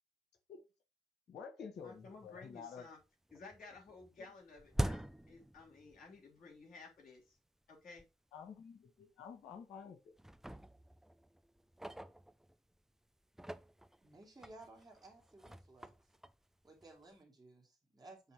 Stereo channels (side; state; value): both; normal; correlation 0.90